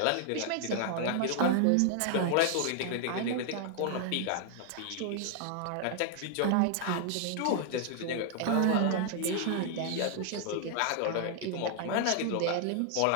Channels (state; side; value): different; both; correlation 0.00